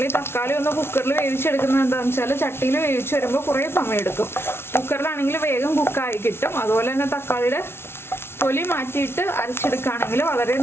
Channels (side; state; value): right; late; 0.12 ms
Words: ഈ തക്കാളി ഒന്ന് കുക്കറിൽ വേവിച്ചെടുക്കുന്നത് എന്താണെന്ന് വെച്ചാൽ ചട്ടിയിൽ വേവിച്ച് വരുമ്പോൾ കുറേ സമയം എടുക്കും. കുക്കറിലാണെങ്കിൽ വേഗം കുക്കായി കിട്ടും. അതുപോലെ തന്നെ തക്കാളിയുടെ തൊലി മാറ്റിയിട്ട് അരച്ചെടുക്കുകയാണെങ്കിൽ വളരെ